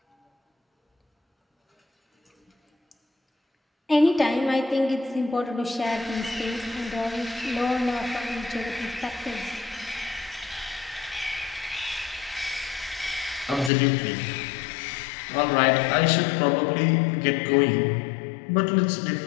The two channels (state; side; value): drops out; right; at 13.7 s